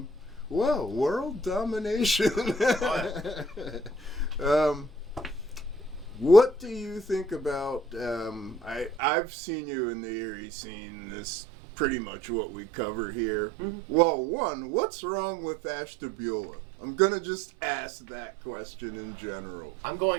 Well, world domination. What do you think about? I've seen you in the Erie scene. This pretty much what we cover here. Mm-hmm. Well, one, what's wrong with Ashtabula? I'm gonna just ask that question in general. I'm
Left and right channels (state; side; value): drops out; left; at 9.0 s